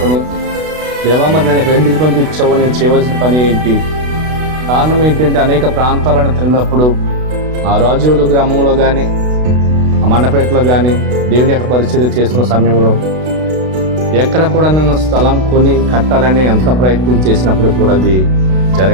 దేవా మరి నేను ఎందుకు పంపించావో, నేను చేయవలసిన పని ఏంటి, కారణం ఏంటంటే అనేక ప్రాంతాలను తిరిగినప్పుడు ఆ రాజోలు గ్రామంలో కానీ ఆ మండపేటలో కానీ దేవుని యొక్క పరిచర్య చేస్తున్న సమయంలో ఎక్కడ కూడా నేను స్థలం కొని కట్టాలని ఎంత ప్రయత్నం చేసినప్పుడు కూడా అది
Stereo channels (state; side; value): late; left; 32 ms